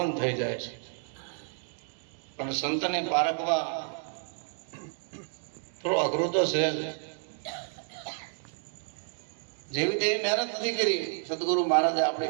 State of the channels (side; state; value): left; silent; 57 dB below the other